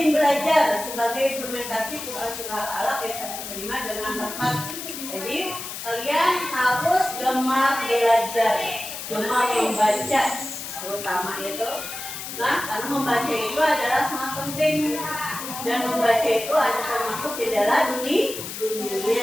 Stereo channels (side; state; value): left; noise; hiss, 8 dB below the sound